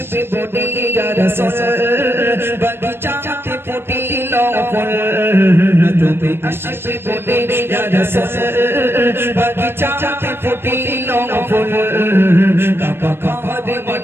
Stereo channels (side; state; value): left; late; 0.11 ms